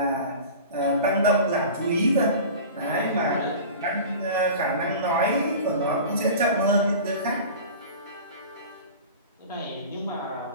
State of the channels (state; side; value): inverted; both; correlation -0.36